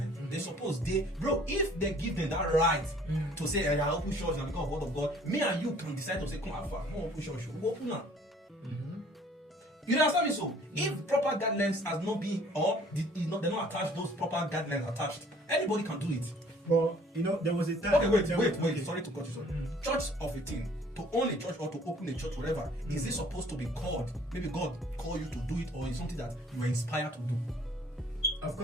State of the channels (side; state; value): both; normal; correlation 0.55